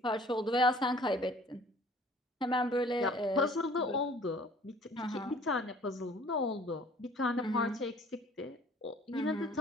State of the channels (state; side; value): normal; both; correlation 0.53